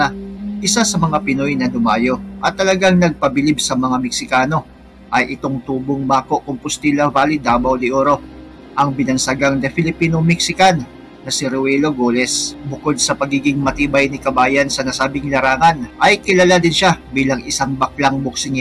Isa sa mga Pinoy na dumayo at talagang nagpabilib sa mga Meksikano ay itong tubong Bako Compostela Valley, Davao de Oro, ang binansagang The Filipino-Mexican na si Ruelo Goles. Bukod sa pagiging matibay ni kabayan sa nasabing larangan, ay kilala din siya bilang isang baklang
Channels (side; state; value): both; identical; correlation 1.00